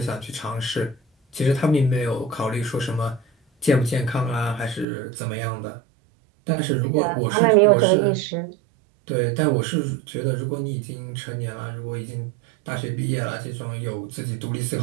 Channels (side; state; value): left; drops out; at 4.9 s